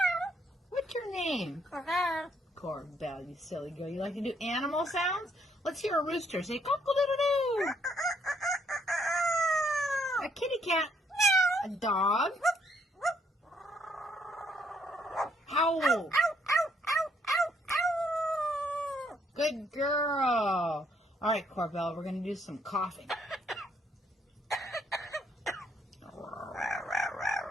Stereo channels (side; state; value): both; normal; correlation 0.70